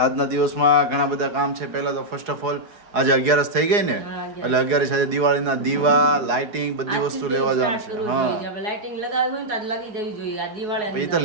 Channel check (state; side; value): late; left; 4.8 ms